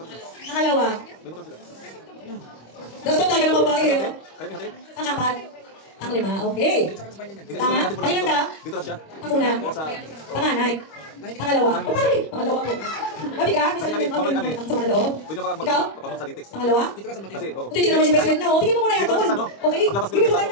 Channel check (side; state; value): right; late; 25 ms